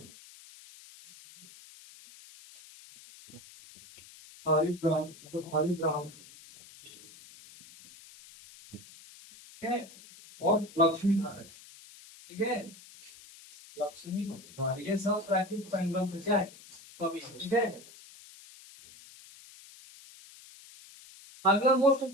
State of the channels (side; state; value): left; noise; hiss, 20 dB below the sound